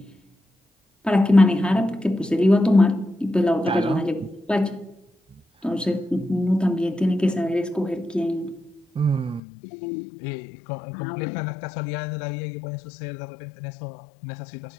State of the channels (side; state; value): right; drops out; at 9.4 s